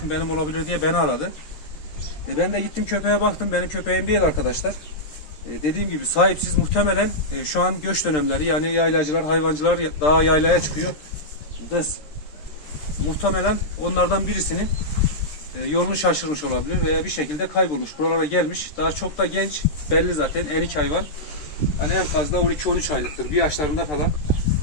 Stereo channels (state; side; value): late; right; 13 ms